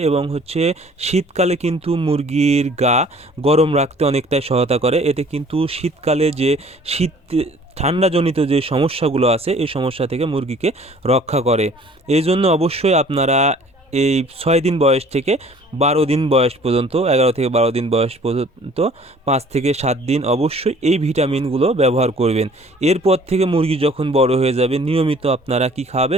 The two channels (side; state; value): both; normal; correlation 0.53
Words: এবং শীতকালে কিন্তু মুরগির গা গরম রাখতে অনেকটাই সহায়তা করে। এতে কিন্তু শীতকালে যে ঠান্ডাজনিত যে সমস্যাগুলো আছে এই সমস্যা থেকে মুরগিকে রক্ষা করে। এই জন্য অবশ্যই আপনারা এই 6 দিন বয়স থেকে 12 দিন বয়স পর্যন্ত, 11 থেকে 12 দিন বয়স পর্যন্ত, 5 থেকে 7 দিন অবশ্যই এই ভিটামিনগুলো ব্যবহার করবেন। এরপর থেকে মুরগি যখন বড় হয়ে যাবে নিয়মিত আপনারা কি